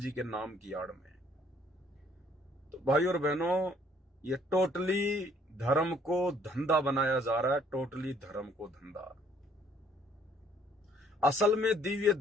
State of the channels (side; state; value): both; normal; correlation 0.62